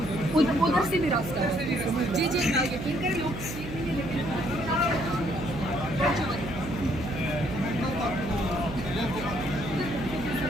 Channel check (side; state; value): right; noise; hum, 9 dB below the sound